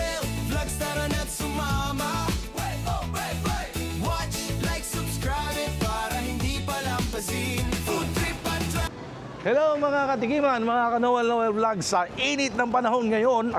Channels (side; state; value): both; identical; correlation 1.00